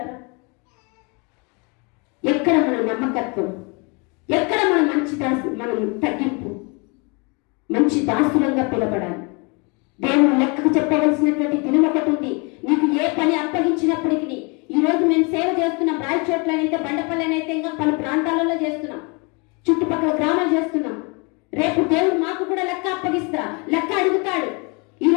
ఎక్కడ మన నమ్మకత్వం? ఎక్కడ మన మంచి మనం తగ్గింపు? మంచి దాసులంగా పిలబడాలి. దేవుడు లెక్కకు చెప్పవలసినటువంటి దినం ఒకటి ఉంది. నీకు ఏ పని అప్పగించినప్పటికీ, ఈ రోజు మేము సేవ చేస్తున్నాం, రాయచోట్లనైతే, బండపల్లెనైతే, ఇంకా పలు ప్రాంతాలలో చేస్తున్నాం, చుట్టుపక్కల గ్రామాలు చేస్తున్నాం. రేపు దేవుడు మాకు కూడా లెక్క అప్పగిస్తా, లెక్క అడుగుతాడు. ఈ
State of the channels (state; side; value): quieter; right; 31.2 dB